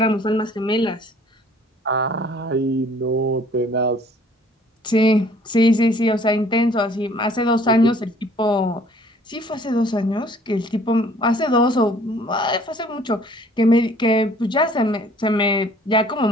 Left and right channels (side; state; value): both; normal; correlation 0.56